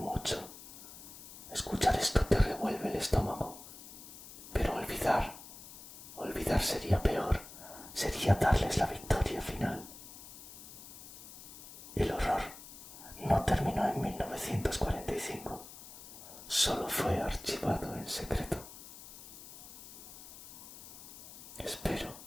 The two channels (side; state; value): left; noise; hiss, 15 dB below the sound